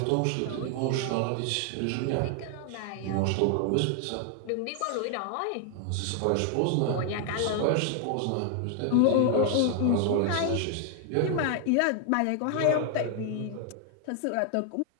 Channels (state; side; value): different; both; correlation 0.00